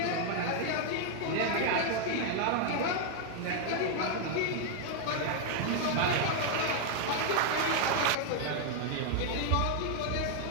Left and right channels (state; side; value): different; both; correlation 0.00